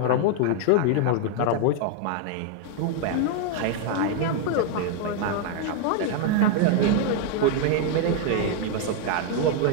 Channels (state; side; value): different; both; correlation 0.00